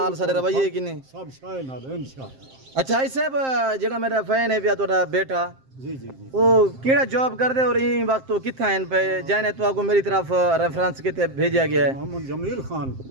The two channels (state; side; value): late; left; 7.6 ms